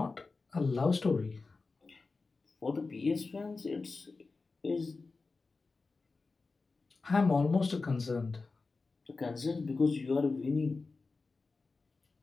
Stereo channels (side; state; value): right; quieter; 4.0 dB